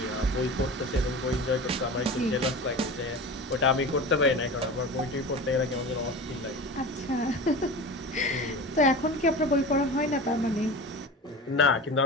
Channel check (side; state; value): both; normal; correlation 0.32